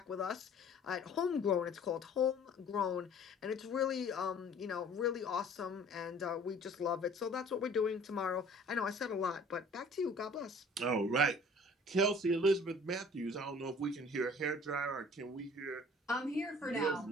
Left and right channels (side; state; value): both; normal; correlation 0.50